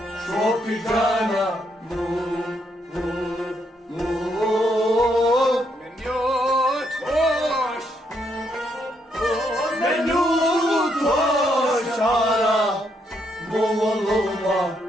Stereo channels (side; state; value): both; normal; correlation 0.75